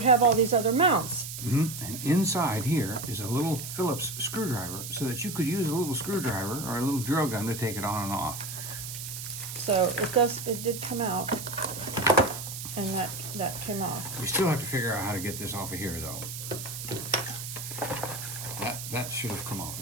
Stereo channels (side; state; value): right; noise; hiss, 8 dB below the sound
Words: have all these other mounts. And inside here is a little Phillips screwdriver, so that you could use a little screwdriver or a little drill gun to take it on and off. So it did come out, and that came off. We still have to figure out how to get this off of here, though. That should have come off.